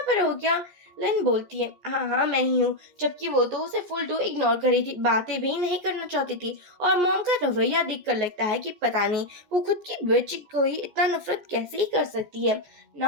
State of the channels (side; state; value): left; late; 14 ms